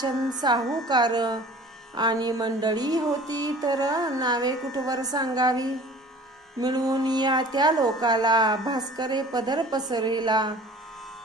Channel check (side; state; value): both; normal; correlation 0.45